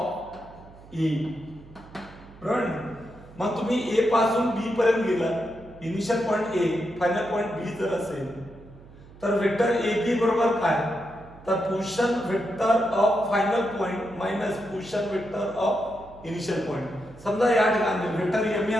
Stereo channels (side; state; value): right; noise; hum, 21 dB below the sound